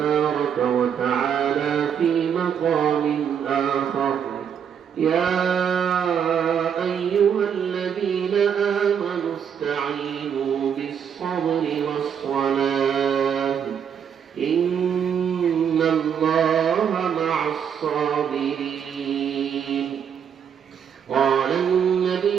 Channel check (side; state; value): left; quieter; 8.0 dB